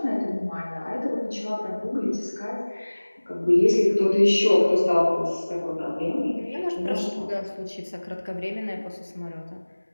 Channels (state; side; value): inverted; both; correlation -1.00